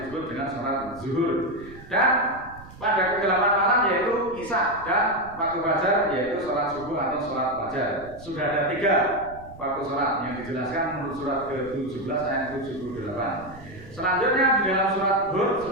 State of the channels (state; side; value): noise; right; rumble, 18 dB below the sound